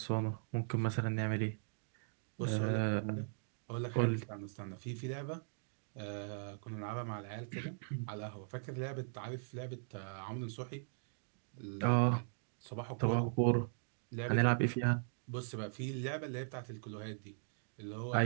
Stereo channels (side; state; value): left; silent; digital silence